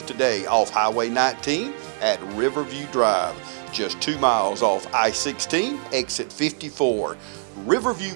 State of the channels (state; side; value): silent; left; digital silence